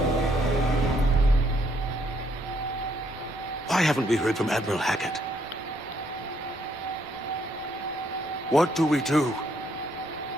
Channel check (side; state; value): both; normal; correlation 0.71